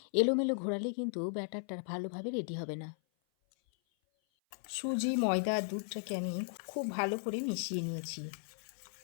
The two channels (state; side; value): silent; right; 54 dB below the other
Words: এলোমেলো ঘোরালে কিন্তু ব্যাটারটা ভালোভাবে রেডি হবে না। সুজি, ময়দা আর দুধটাকে আমি খুব ভালো করে মিশিয়ে নিয়েছি।